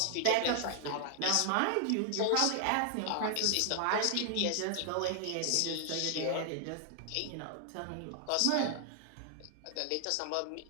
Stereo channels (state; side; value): different; both; correlation 0.00